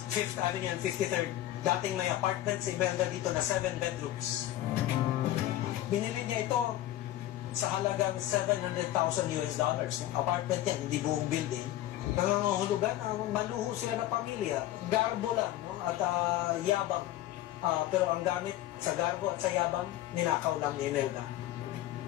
5th Avenue and 53rd. Dating may apartment si Imelda dito na 7 bedrooms. Binili niya ito sa halagang $700,000 US. Apartment yan, hindi buong building. Nangangahulugan, maluho sila na pamilya. Garbo lang, no? At yabang. Pero ang gamit sa garbo at sa yabang, ninakaw lang ni Imelda.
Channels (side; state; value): right; quieter; 14.2 dB